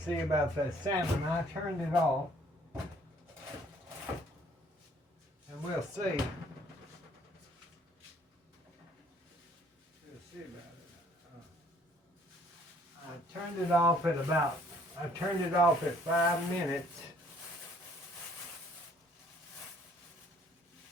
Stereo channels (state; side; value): normal; both; correlation 0.60